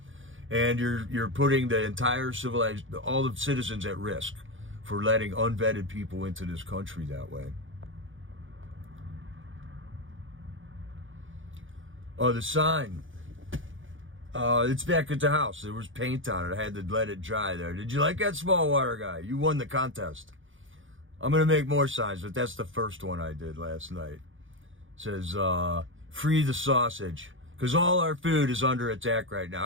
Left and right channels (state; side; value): late; left; 0.57 ms